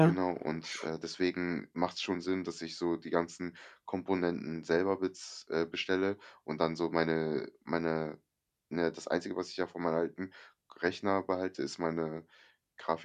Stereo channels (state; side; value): identical; both; correlation 1.00